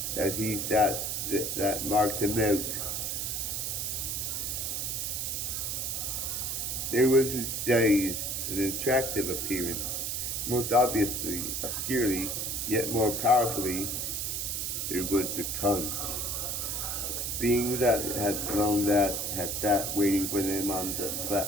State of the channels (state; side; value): noise; right; hiss, 1 dB below the sound